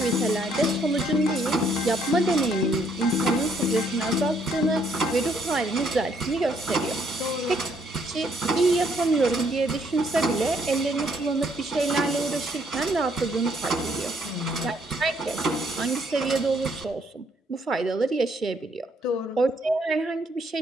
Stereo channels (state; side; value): normal; both; correlation 0.69